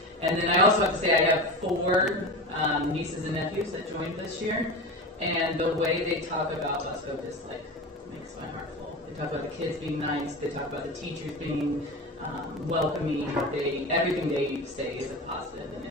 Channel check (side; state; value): both; normal; correlation 0.27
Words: And then I also have to say I have 4 nieces and nephews that joined this year, and the way they talk about Busco just makes my heart full. They talk about the kids being nice, they talk about the teachers being welcoming. Everything they say is a positive, and